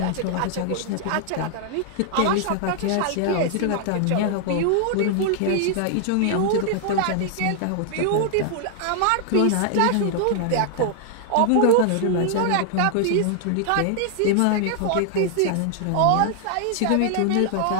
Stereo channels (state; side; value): different; both; correlation 0.00